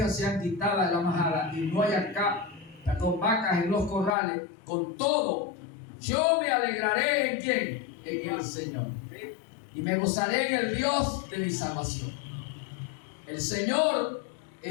sean quitadas de la majada y no haya vacas en los corrales, con todo yo me alegraré ¿en quién? En el Señor, y me gozaré en el Dios de mi salvación. El Señor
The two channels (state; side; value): drops out; right; at 4.2 s